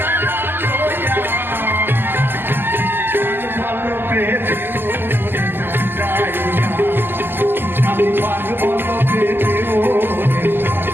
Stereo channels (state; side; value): late; left; 0.097 ms